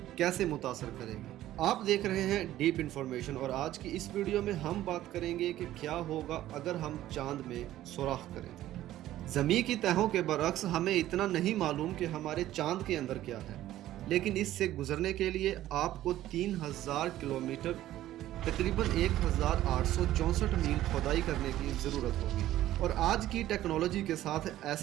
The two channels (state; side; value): quieter; left; 13.9 dB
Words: कैसे मुतासर करेगी? आप देख रहे हैं डीप इंफॉर्मेशन और आज की इस वीडियो में हम बात करेंगे कि क्या होगा अगर हम चांद में सुराख करें। ज़मीन की तहों के बरक्स हमें इतना नहीं मालूम कि हमारे चांद के अंदर क्या है, लेकिन इससे गुजरने के लिए आपको 3000 किलोमीटर तकरीबन 1864 मील खोदाई करने की ज़रूरत होगी और आज की टेक्नोलॉजी के साथ